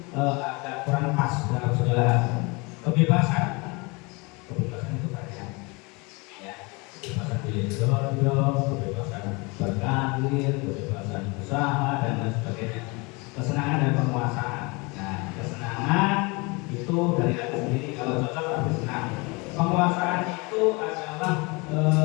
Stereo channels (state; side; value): quieter; right; 27.8 dB